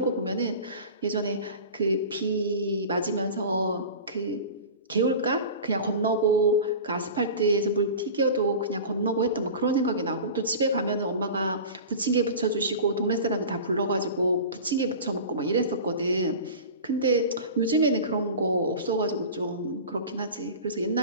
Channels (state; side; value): inverted; both; correlation -0.35